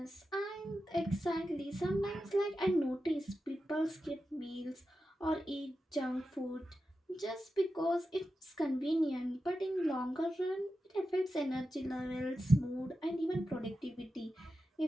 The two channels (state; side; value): normal; both; correlation 0.91